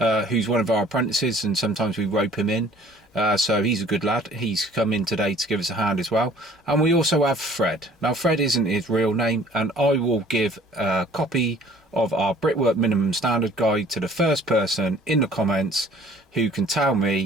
who's one of our apprentices, and sometimes we rope him in. So he's a good lad. He's come in today to give us a hand as well. And we also have Fred. Now Fred isn't his real name, and I will give a copy of our Brickwork Minimum Standard Guide to the first person in the comments who can tell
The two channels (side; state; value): both; normal; correlation 0.53